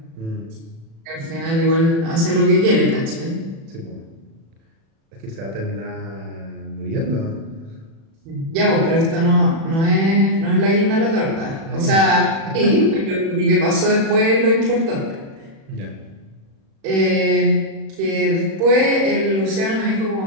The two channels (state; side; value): late; left; 36 ms